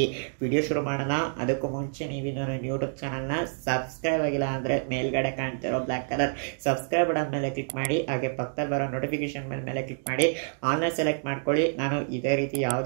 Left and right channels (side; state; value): left; silent; digital silence